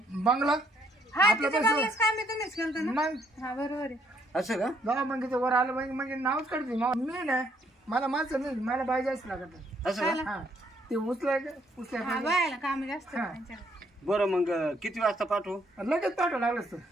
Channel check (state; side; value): normal; both; correlation 0.69